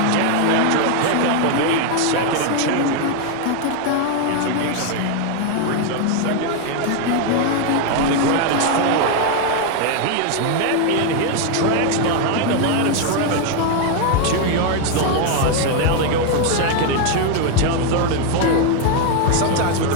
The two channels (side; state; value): both; different; correlation 0.01